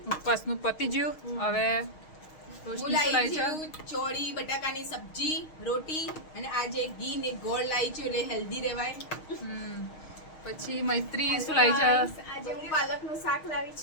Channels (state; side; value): late; right; 6.4 ms